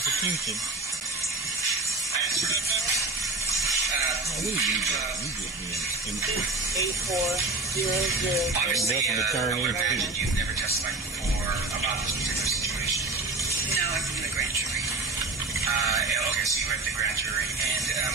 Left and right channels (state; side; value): quieter; left; 3.3 dB